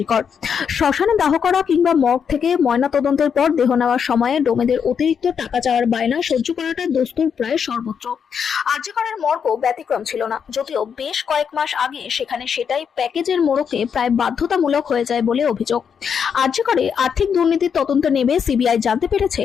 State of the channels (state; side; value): quieter; right; 7.1 dB